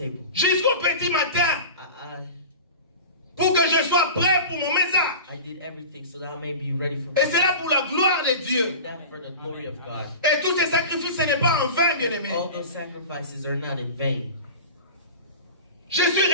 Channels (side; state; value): both; inverted; correlation -0.32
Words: jusqu'au petit matin pour que je sois prêt pour mon message. I did everything so that I may be ready for Et c'est là pour la gloire de Dieu. that for the glory of God. Et tous ces sacrifices, ce n'est pas en vain, bien-aimés. All those sacrifices are not in vain. Je suis